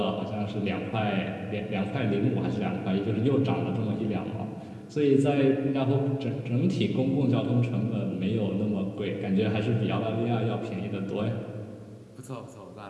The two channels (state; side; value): identical; both; correlation 1.00